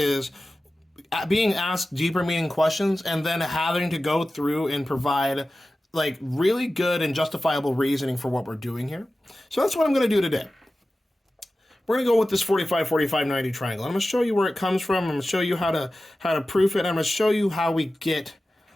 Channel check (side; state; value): both; normal; correlation 0.95